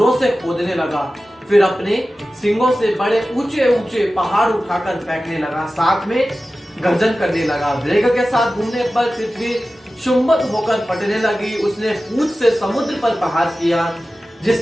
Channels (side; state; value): both; normal; correlation 0.95